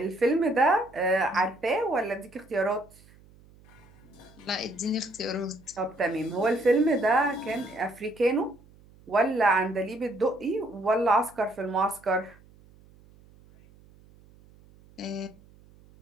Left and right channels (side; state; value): right; noise; hum, 26 dB below the sound